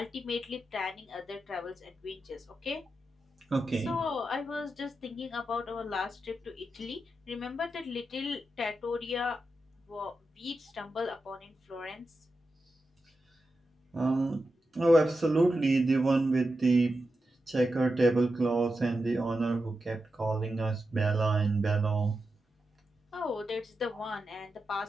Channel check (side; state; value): both; normal; correlation 0.89